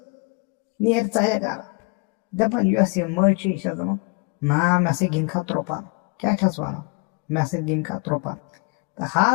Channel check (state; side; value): quieter; right; 32.4 dB